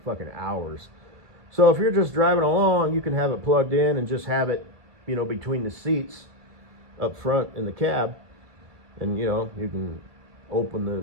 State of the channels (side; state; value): left; late; 2.0 ms